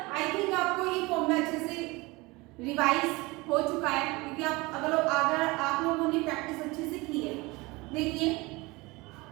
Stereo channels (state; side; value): quieter; left; 23.5 dB